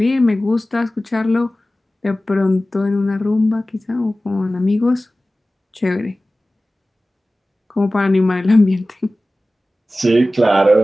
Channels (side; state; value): both; normal; correlation 0.96